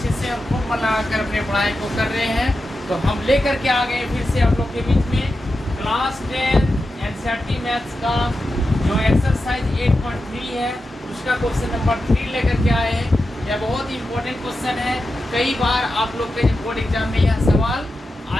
से और खूब मन लगाकर अपने पढ़ाई को कर रहे हैं। तो हम लेकर के आ गए फिर से आप लोग के बीच में क्लास 10 एनसीईआरटी मैथ्स का जो एक्सरसाइज 8.3 है उसका क्वेश्चन नंबर 3 लेकर के आए हैं। यह बहुत ही इम्पोर्टेंट क्वेश्चन है, कई बार आप लोग के बोर्ड एग्जाम में यह सवाल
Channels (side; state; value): both; normal; correlation 0.90